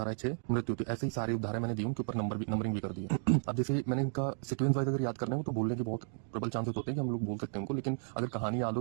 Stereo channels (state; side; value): silent; left; digital silence